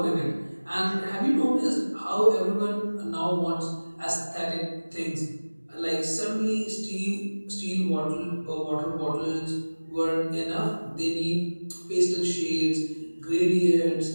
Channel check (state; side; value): inverted; both; correlation -1.00